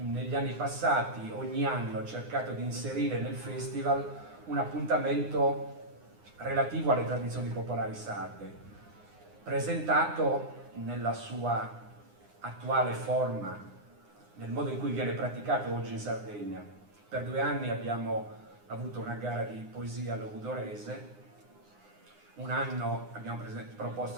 anni passati ogni anno cercato di inserire nel festival un appuntamento relativo alle tradizioni popolari sarde, presentato nella sua attuale forma, nel modo in cui viene praticato oggi in Sardegna. Per 2 anni abbiamo avuto una gara di poesia logudorese, un anno abbiamo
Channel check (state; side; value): late; left; 9.7 ms